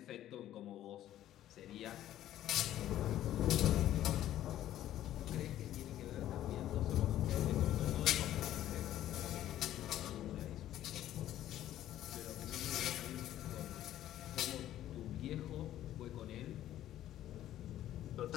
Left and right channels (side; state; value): right; quieter; 12.7 dB